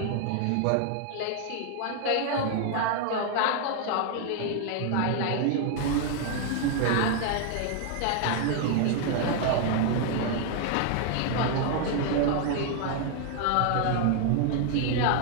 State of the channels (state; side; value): different; both; correlation 0.00